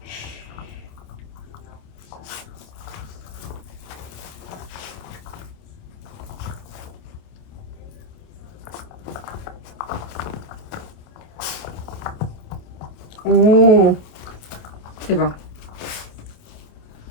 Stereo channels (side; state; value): right; late; 28 ms